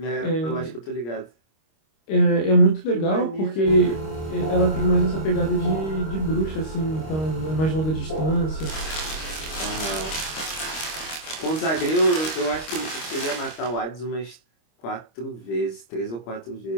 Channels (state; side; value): late; right; 26 ms